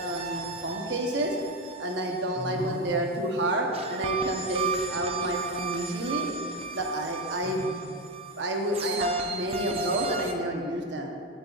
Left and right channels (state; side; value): normal; both; correlation 0.11